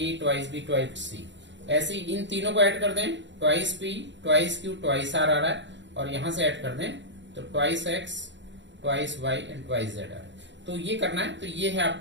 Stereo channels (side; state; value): left; late; 0.53 ms